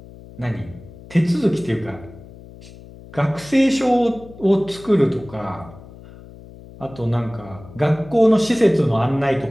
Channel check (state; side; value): noise; left; hum, 19 dB below the sound